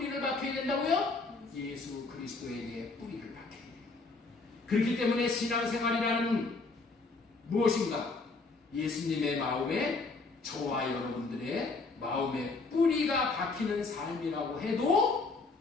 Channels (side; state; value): right; quieter; 3.8 dB